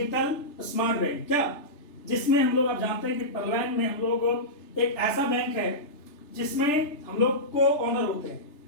स्मार्ट बैंक, क्या, जिसमें हम लोग, आप जानते हैं कि परवान में हम लोग एक ऐसा बैंक है जिसमें हम लोग को ओनर होते हैं,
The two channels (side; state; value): right; late; 3.3 ms